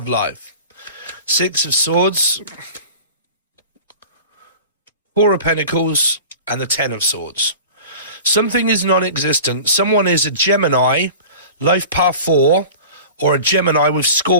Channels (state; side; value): inverted; both; correlation -0.38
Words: life. 6 of Swords, 4 of Pentacles, and the 10 of Swords. Something is non-existent. Someone is a Gemini, life path 4, or a Gemini with